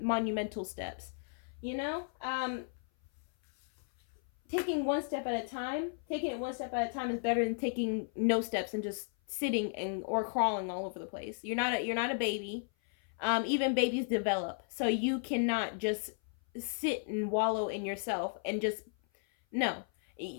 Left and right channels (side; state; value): right; silent; 55 dB below the other